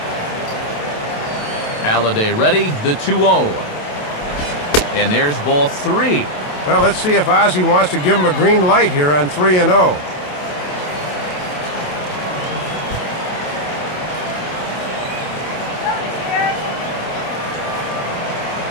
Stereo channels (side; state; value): right; late; 27 ms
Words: Halladay ready, the 2-0. And there's ball 3. Well, let's see if Ozzie wants to give him a green light here on 3-0.